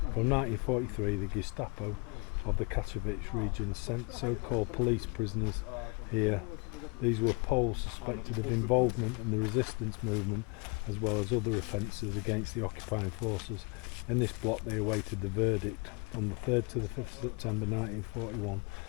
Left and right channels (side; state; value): right; quieter; 31.2 dB